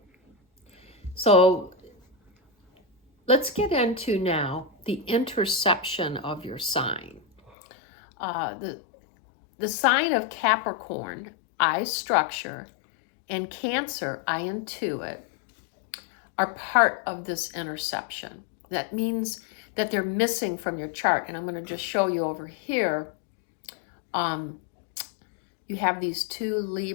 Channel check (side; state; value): right; drops out; at 7.5 s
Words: So let's get into now the interception of your sign. The sign of Capricorn, I structure, and Cancer, I intuit, are part of this interception. That means that they're missing from your chart. And I'm going to just show you over here. You have these two